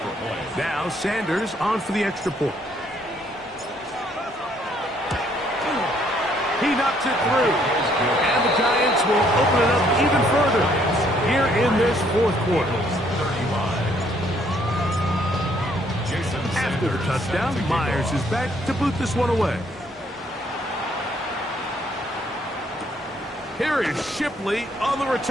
Now Sanders on for the extra point. He knocks it through. And the Giants will open it up even further here in this fourth quarter. After the touchdown, Myers is back to boot this one away. Here is Shipley on the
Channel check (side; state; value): both; normal; correlation 0.67